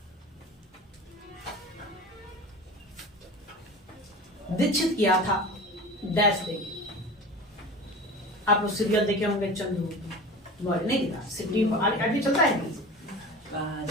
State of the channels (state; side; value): normal; both; correlation 0.34